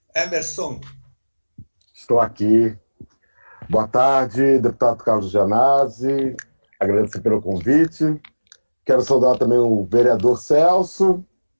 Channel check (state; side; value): inverted; both; correlation -1.00